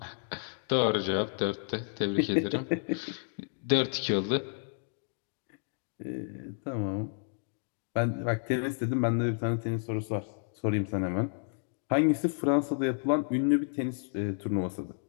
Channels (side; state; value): right; silent; digital silence